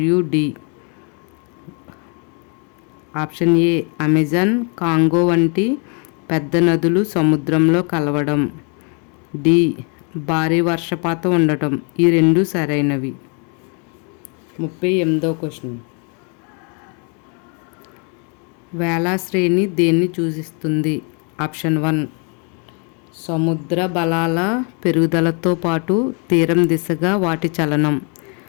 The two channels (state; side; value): quieter; right; 37.1 dB